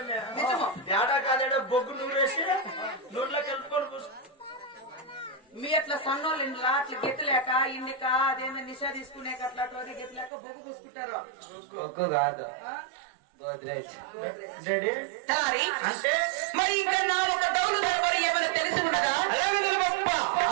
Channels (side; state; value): left; drops out; at 10.3 s